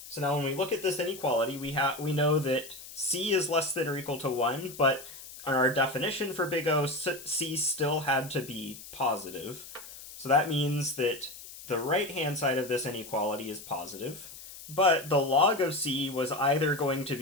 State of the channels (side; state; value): left; noise; hiss, 15 dB below the sound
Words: So now when we look at this inequality, we know that C is less than or equal to 1, but on our definition for big O, C still had to be positive. So that means that the right-hand side of this inequality is positive. But the log of C was either going to